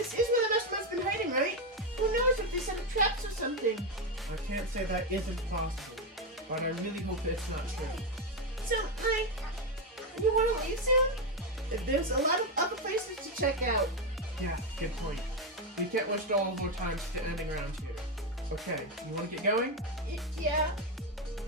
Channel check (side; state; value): both; normal; correlation 0.08